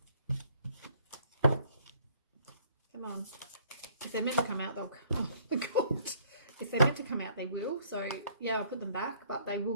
Come on. If they're meant to come out, they'll... Oh my god. If they're meant to come out, they will. So, yeah, I'll put them back, but they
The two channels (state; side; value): inverted; both; correlation -0.61